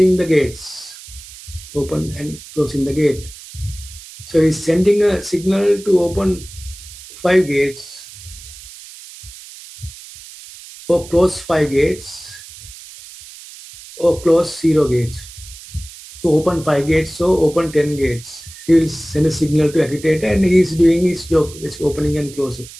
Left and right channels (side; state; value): right; noise; hiss, 17 dB below the sound